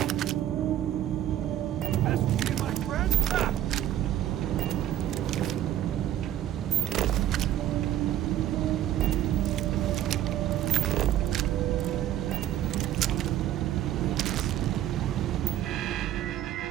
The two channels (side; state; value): left; quieter; 12.2 dB